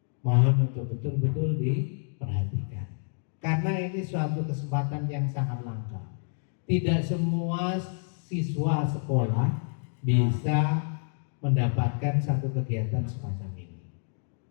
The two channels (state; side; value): silent; right; 56 dB below the other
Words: mohon untuk betul-betul diperhatikan, karena ini suatu kesempatan yang sangat langka. Tidak semua siswa sekolah bisa mendapatkan satu kegiatan semacam ini.